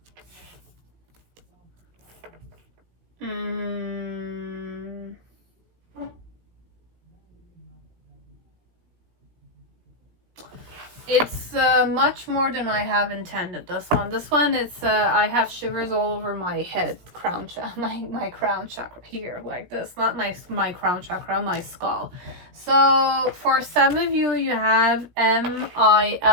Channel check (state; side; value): late; left; 17 ms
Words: It's much more than I have intended. This one, it's I have shivers all over my head, crown my crown chakra here, like this. Not my crown chakra, my skull. So for some of you, you have